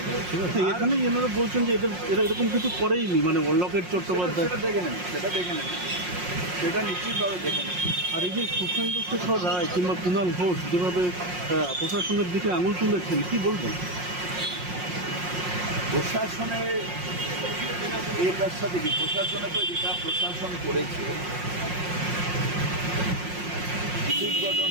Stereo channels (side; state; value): left; late; 5.6 ms